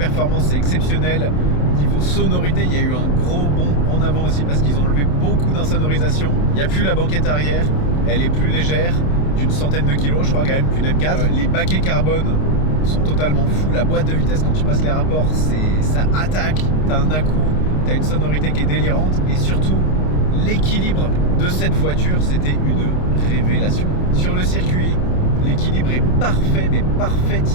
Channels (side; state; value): right; late; 28 ms